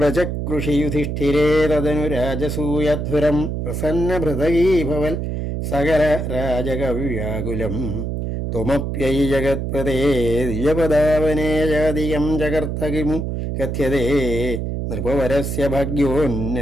യുധിഷ്ഠിരേതനു രാജസൂയധ്വരം പ്രസന്നഭൃതകീഭവൽ സകല രാജകവ്യാകുലം ത്വമപ്യൈ ജഗത്പദേ ദ്വിജപദാവനേ ജാതിയം ജഗർത്തകിമു കഥ്യതേ നൃപവരസ്യ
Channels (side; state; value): right; noise; hum, 3 dB below the sound